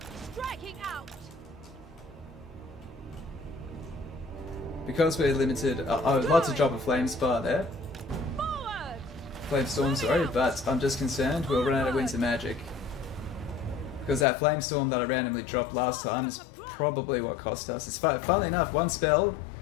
Striking out! Because we're limited, I would like to drop a flame spar there. Forward! Flame storm, sorry, but I'm just concerned we'll run out of winter magic. Because that flame storm that I randomly dropped last time is probably what cost us. It's funnily enough, one spell,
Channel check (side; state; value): right; drops out; at 14.2 s